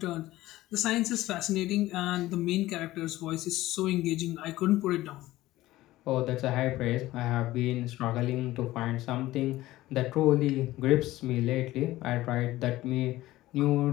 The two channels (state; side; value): quieter; right; 16.6 dB